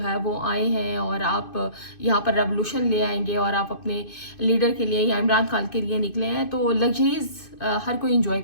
ہے وہ آئے ہیں اور آپ یہاں پر ریولوشن لے آئیں گے اور آپ اپنے لیڈر کے لیے یا عمران خان کے لیے نکلے ہیں, تو لگژریز ہر کوئی انجوائے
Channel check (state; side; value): late; right; 2.5 ms